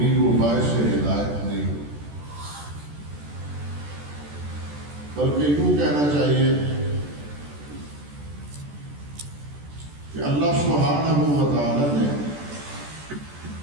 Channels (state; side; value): late; left; 14 ms